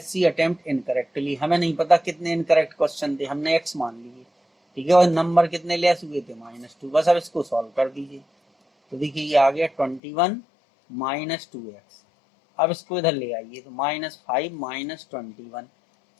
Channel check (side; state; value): right; drops out; at 10.0 s